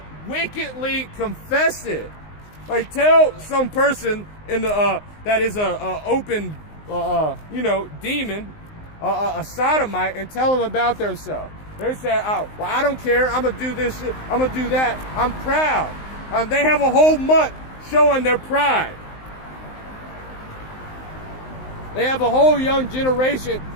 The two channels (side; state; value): right; late; 19 ms